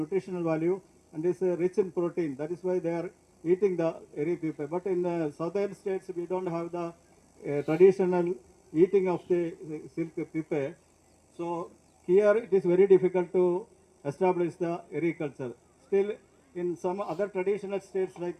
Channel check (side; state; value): both; identical; correlation 1.00